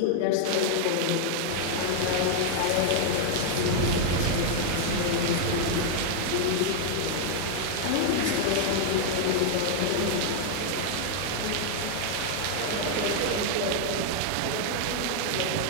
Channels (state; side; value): different; both; correlation 0.00